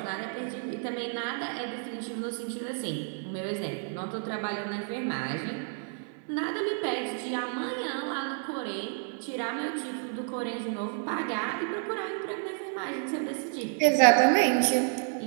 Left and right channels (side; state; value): left; silent; 55 dB below the other